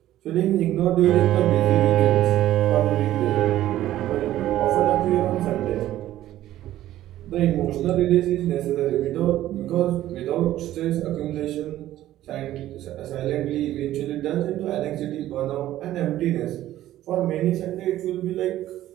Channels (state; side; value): quieter; left; 13.7 dB